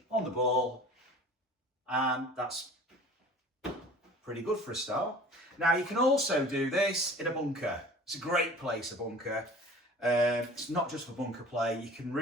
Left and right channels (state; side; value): normal; both; correlation 0.44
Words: on the ball, and that's pretty good for a start. Now you can also do this in a bunker. It's a great place, a bunker. It's not just for bunker play. You can